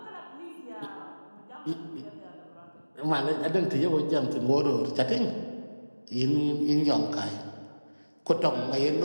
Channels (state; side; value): inverted; both; correlation -1.00